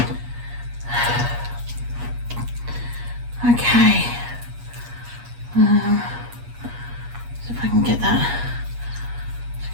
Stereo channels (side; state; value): left; late; 8.3 ms